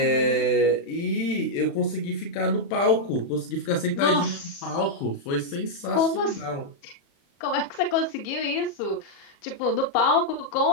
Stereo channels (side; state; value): right; late; 35 ms